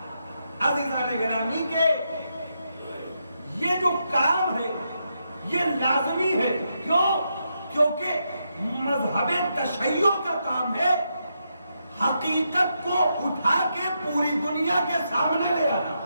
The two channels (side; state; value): both; inverted; correlation -0.83